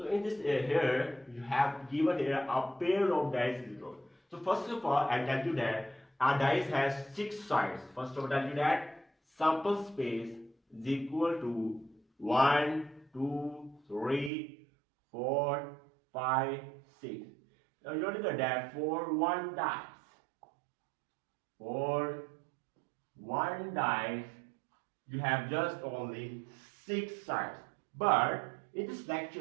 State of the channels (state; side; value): drops out; left; at 14.3 s